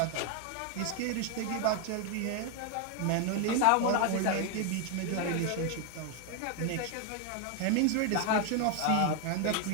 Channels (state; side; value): different; both; correlation 0.01